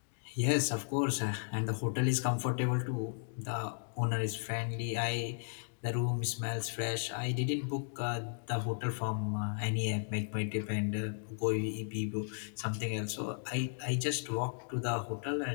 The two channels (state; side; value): silent; right; digital silence